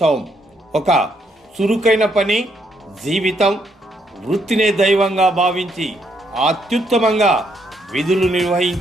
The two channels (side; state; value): both; normal; correlation 0.74